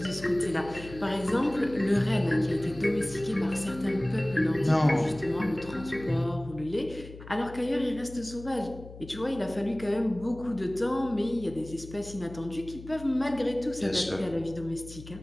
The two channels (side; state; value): left; noise; hum, 15 dB below the sound